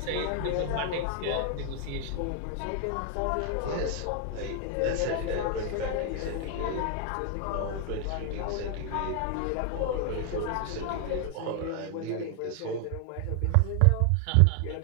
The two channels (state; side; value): different; both; correlation 0.00